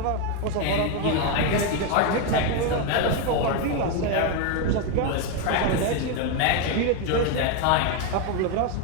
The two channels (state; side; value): different; both; correlation 0.02